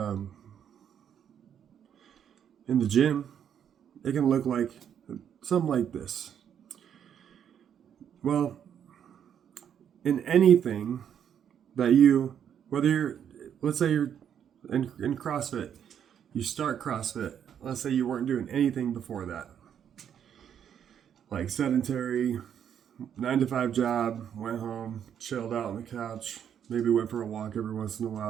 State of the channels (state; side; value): quieter; left; 8.9 dB